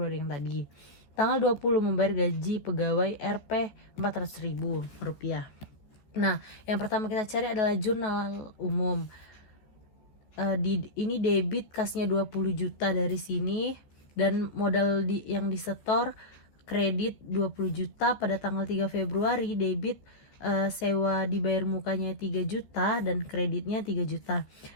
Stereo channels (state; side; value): late; right; 14 ms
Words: yang tadi. Tanggal 20 membayar gaji pegawai Rp 400.000 rupiah. Nah, yang pertama kita cari adalah jurnal umum. Ini debit kasnya 20 juta dari sini dan modal yang disetor kredit 20 juta pada tanggal 3 Februari, debit sewa dibayar mukanya 3 juta dan kreditnya 3 juta.